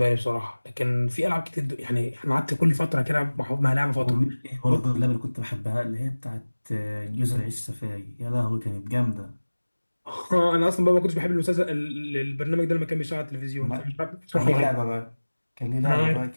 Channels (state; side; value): inverted; both; correlation -1.00